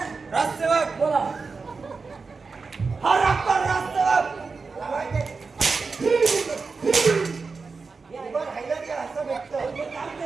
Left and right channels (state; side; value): quieter; left; 4.5 dB